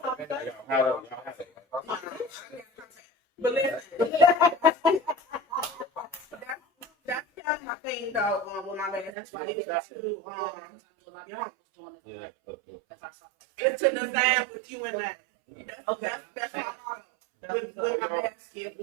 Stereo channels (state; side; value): drops out; left; at 9.1 s